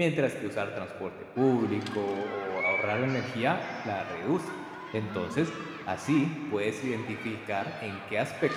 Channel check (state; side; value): identical; both; correlation 1.00